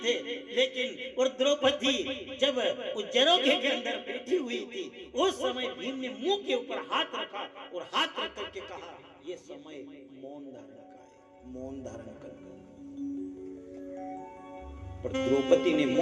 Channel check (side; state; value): both; identical; correlation 1.00